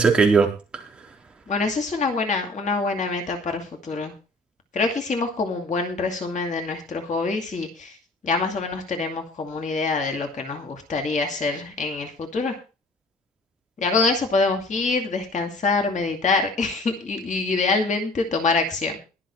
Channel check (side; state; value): both; normal; correlation 0.50